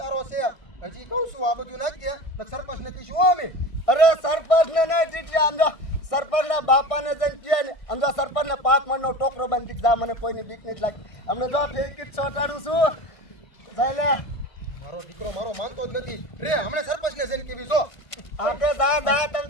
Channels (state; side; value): late; right; 1.6 ms